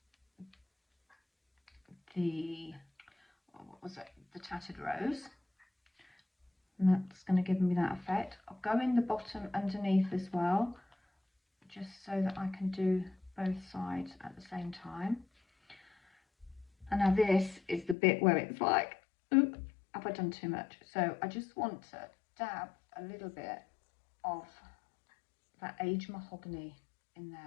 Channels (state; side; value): drops out; right; at 17.9 s